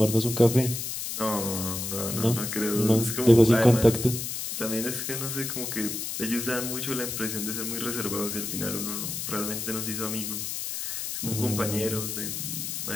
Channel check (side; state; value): left; noise; hiss, 4 dB below the sound